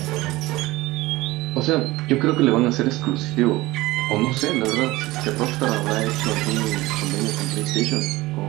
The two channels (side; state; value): left; quieter; 19.3 dB